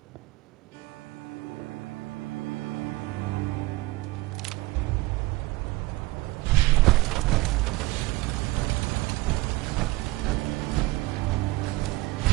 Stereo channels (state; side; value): quieter; left; 20.4 dB